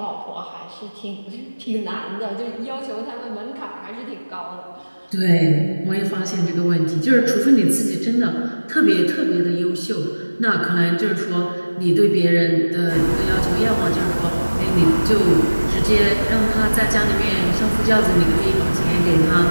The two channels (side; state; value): both; inverted; correlation -1.00